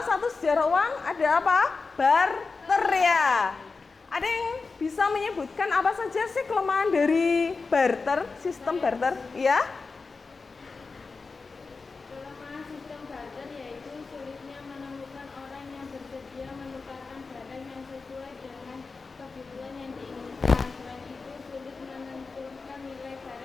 satu sejarah uang ada apa? Barter ya. Ada yang bisa menyebutkan apa saja sih kelemahan dari barter, sistem barter? Ya? Kelemahan sistem barter yaitu sulitnya menemukan orang yang bersedia menukarkan barang yang sesuai dengan kebutuhan yang diinginkan. Selain itu, sulit menentukan nilai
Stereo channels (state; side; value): quieter; right; 4.3 dB